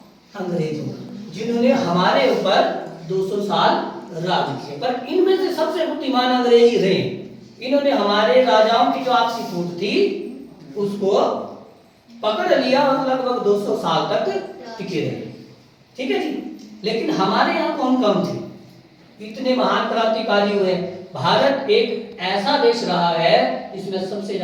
अंग्रेजों का, जिन्होंने हमारे ऊपर 200 साल राज किया। पर इनमें से सबसे बुद्धिमान अंग्रेज ही रहे। इन्होंने हमारे राजाओं की जो आपसी फूट थी उसको पकड़ लिया और लगभग 200 साल तक टिके रहे। ठीक है जी। लेकिन हमारे यहाँ कौन कौन थे? इतने महान क्रांतिकारी हुए। भारत एक ऐसा देश रहा है जिसमें सबसे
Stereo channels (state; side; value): identical; both; correlation 1.00